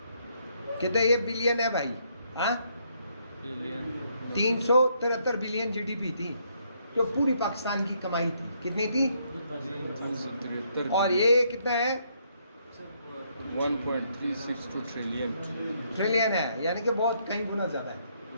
कितने ये बिलियन है भाई? हाँ 373 बिलियन जीडीपी थी जो पूरी पाकिस्तान की कमाई थी। कितनी थी? और ये कितना है? 1.362 ट्रिलियन है, यानी कि बहुत कई गुना ज़्यादा है।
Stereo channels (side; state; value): both; inverted; correlation -0.72